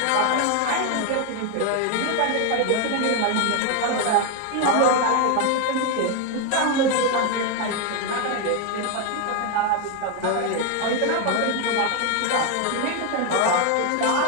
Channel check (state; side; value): different; both; correlation 0.01